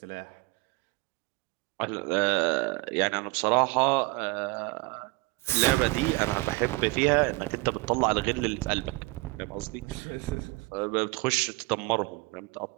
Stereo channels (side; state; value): left; quieter; 24.2 dB